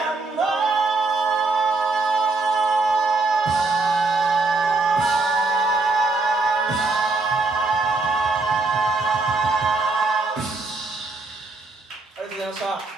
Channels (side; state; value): left; quieter; 3.5 dB